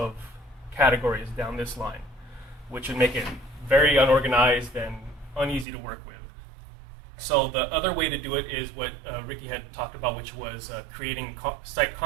categories down this line, which would make it very unorganized and uneasy to work with. So the other way to do it is what Ricky had talked about, which was creating site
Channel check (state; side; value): drops out; left; at 5.7 s